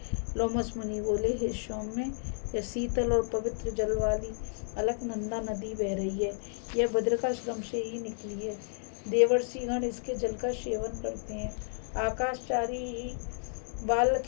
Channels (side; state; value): right; silent; digital silence